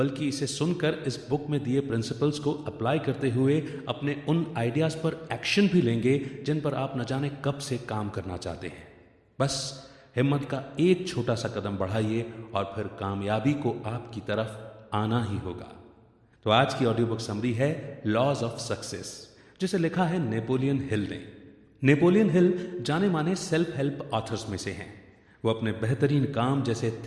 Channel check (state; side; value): identical; both; correlation 1.00